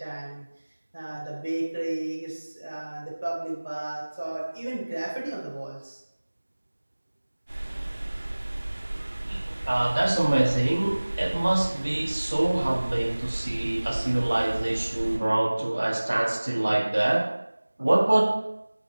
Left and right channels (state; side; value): inverted; both; correlation -1.00